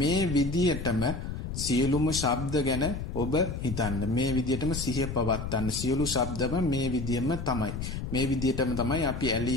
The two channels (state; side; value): noise; left; rumble, 6 dB below the sound